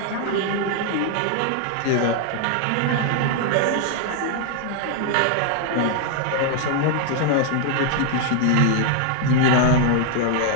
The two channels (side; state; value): both; different; correlation 0.00